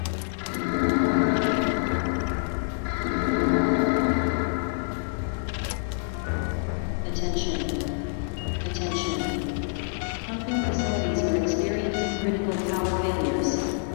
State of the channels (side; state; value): right; silent; digital silence